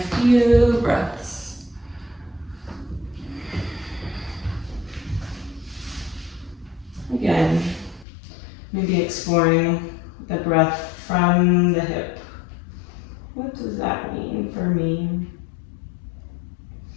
few breaths. Again, maybe exploring the breath from the hip. What does that mean for me?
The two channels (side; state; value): right; drops out; at 8.1 s